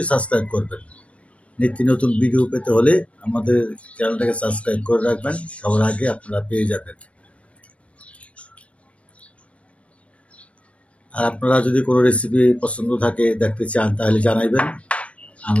সাবস্ক্রাইব করবেন। নিত্য নতুন ভিডিও পেতে হলে আমাদের চ্যানেলটাকে সাবস্ক্রাইব করে রাখবেন, সবার আগে আপনারা পেয়ে যাবেন। আর আপনারা যদি কোনো রেসিপি পছন্দ থাকে, দেখতে চান, তাহলে জানাইবেন,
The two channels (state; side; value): late; right; 0.063 ms